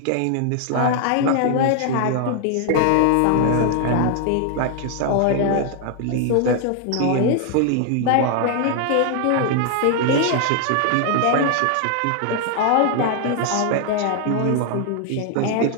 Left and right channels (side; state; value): both; different; correlation 0.00